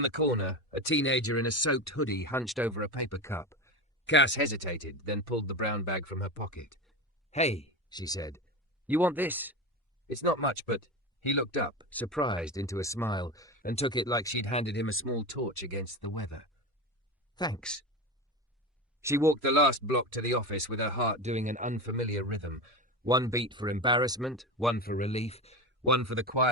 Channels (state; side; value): normal; both; correlation 0.23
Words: the corner, a teenager in a soaked hoodie hunched over a paper cup. Cass hesitated, then pulled the brown bag from her pocket. "Hey," she said. "You want this?" "It's not much, but..." He looked up, surprised, into a smile, and took it like she'd handed him a small torch against the weather. "Thanks." She walked the last block to the office with her heart doing an unfamiliar rhythm. One beat for embarrassment, one for relief, one for the